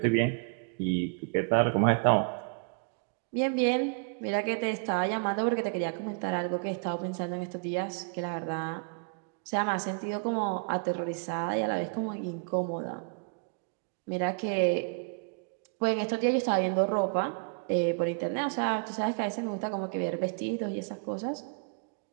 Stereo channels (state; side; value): quieter; left; 39.4 dB